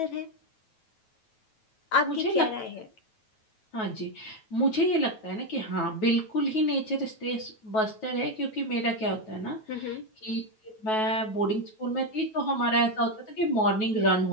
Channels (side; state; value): right; late; 9.3 ms